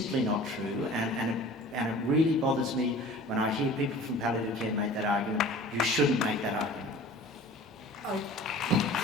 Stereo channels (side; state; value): both; normal; correlation 0.43